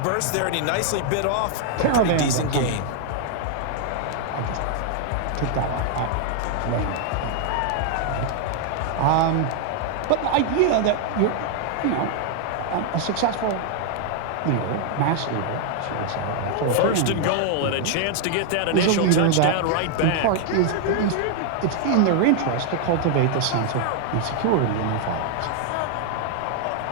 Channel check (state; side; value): different; both; correlation 0.00